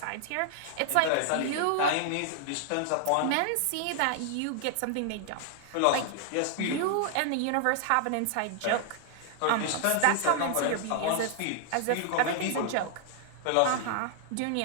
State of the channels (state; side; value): different; both; correlation 0.00